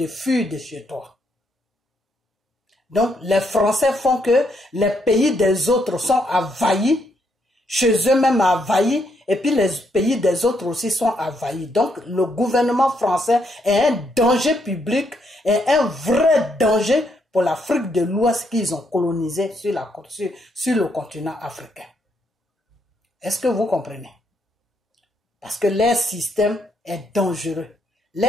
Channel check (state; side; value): normal; both; correlation 0.75